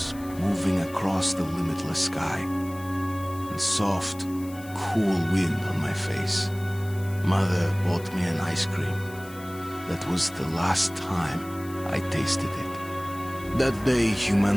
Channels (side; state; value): left; noise; hiss, 20 dB below the sound